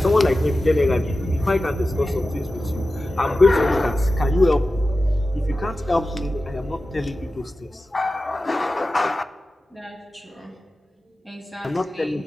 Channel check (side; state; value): both; normal; correlation 0.94